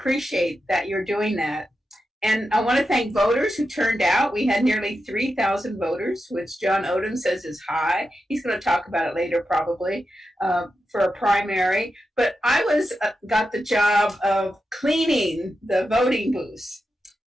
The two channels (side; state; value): both; normal; correlation 0.89